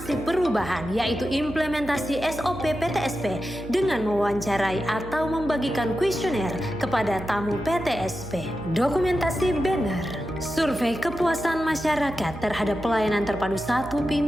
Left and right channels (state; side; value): noise; right; hum, 13 dB below the sound